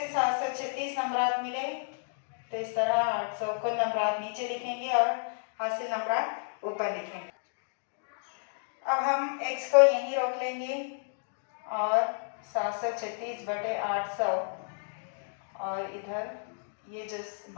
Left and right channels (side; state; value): right; silent; digital silence